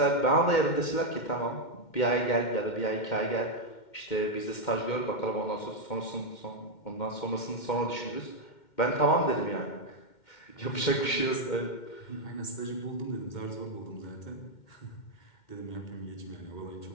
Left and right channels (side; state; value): right; late; 2.1 ms